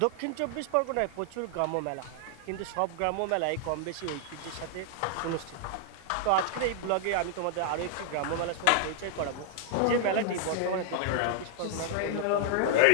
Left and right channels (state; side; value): different; both; correlation -0.01